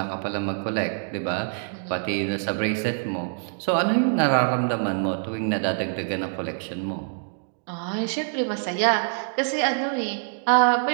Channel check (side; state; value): left; silent; digital silence